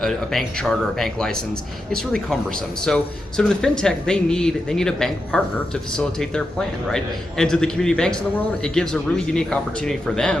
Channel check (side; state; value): both; normal; correlation 0.87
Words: bank charter, a bank license, it's really cumbersome. So to the fintech, they need a bank partner to facilitate their plan, right? And to the community banks in the world, it gives a really unique opportunity for